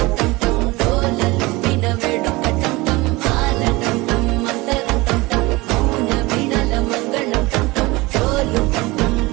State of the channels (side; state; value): left; quieter; 22.2 dB